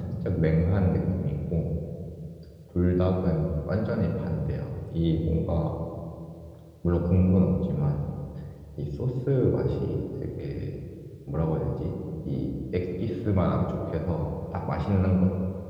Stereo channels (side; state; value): both; identical; correlation 1.00